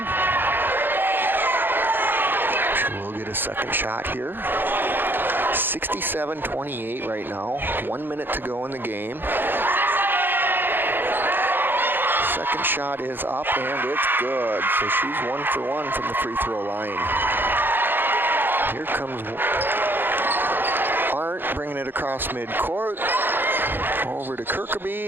She will get a second shot here. 67-28 right now. 1 minute to go in the game. Second shot is up and it's good. So she's 1 for 1 from the free throw line. Here comes Arndt bringing it across midcourt. Over to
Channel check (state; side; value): late; left; 0.097 ms